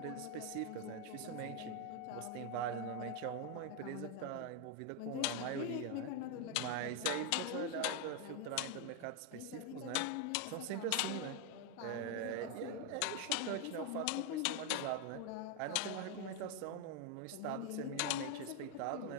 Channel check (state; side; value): different; both; correlation 0.01